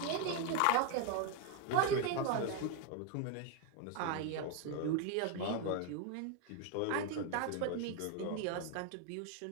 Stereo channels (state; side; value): different; both; correlation 0.01